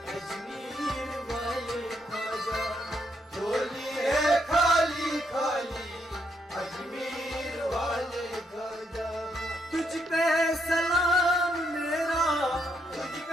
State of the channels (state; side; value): normal; both; correlation 0.77